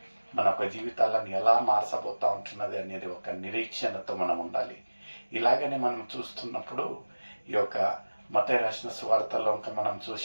మన ఒక జీవితాలను ఎలా మార్చబోతూ ఉంటున్నది అనేది ఒక నిరీక్షణతో మనం ఉండాలి. ఇలాగనే మనం చూస్తున్నప్పుడు ఈ యొక్క మత్తయి రాసిన సువార్తలో ఇంకా మనం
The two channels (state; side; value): inverted; both; correlation -1.00